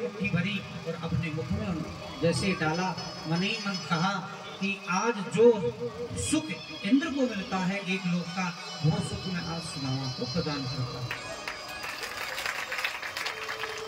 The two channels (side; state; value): both; identical; correlation 1.00